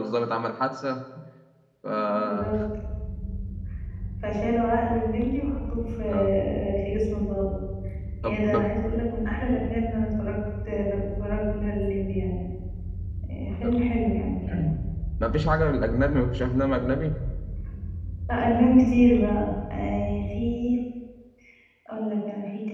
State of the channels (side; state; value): both; identical; correlation 1.00